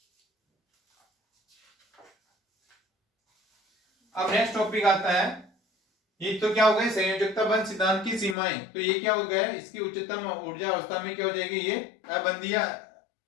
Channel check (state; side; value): drops out; right; at 8.3 s